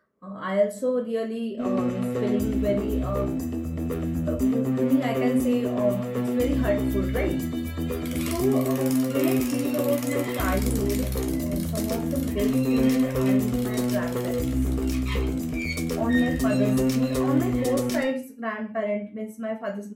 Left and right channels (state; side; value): identical; both; correlation 1.00